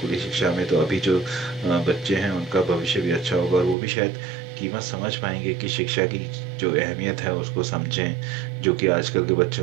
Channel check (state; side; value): drops out; left; at 3.8 s